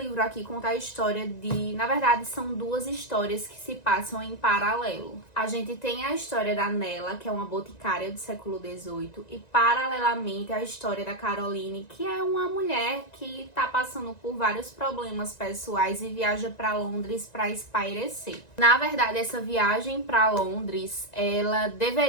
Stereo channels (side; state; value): right; late; 1.9 ms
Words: aqui conta a história de... Na verdade, são 2 histórias que se passam em paralelo. A gente tem a história da Nella, que é uma boticária do século XVIII, e paralelamente a história da Caroline, que é uma mulher que tá passando por vários problemas pessoais e viaja para Londres para espairecer. Na verdade, essa viagem para Londres, ela